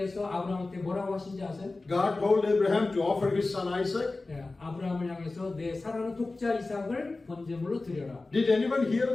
아브라함한테 뭐라고 하신지 아세요? God told Abraham to offer his son Isaac. 예, 아브라함을 향해서 내 사랑하는 독자 이삭을 번제물로 드려라. Did anyone hear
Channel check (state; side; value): quieter; right; 3.3 dB